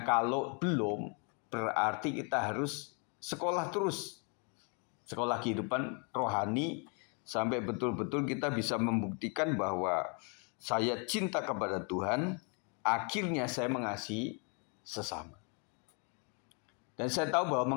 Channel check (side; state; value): right; quieter; 36.9 dB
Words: kalau belum, berarti kita harus sekolah terus. Sekolah kehidupan rohani sampai betul-betul kita bisa membuktikan bahwa saya cinta kepada Tuhan, akhirnya saya mengasihi sesama. Dan saya tahu bahwa